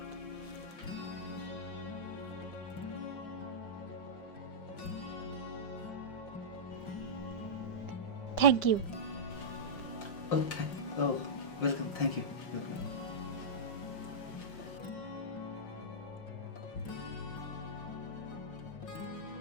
Thank you. Welcome, thank you, welcome.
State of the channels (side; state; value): right; late; 5.7 ms